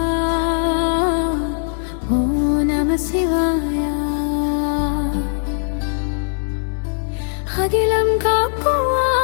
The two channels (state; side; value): silent; right; 66 dB below the other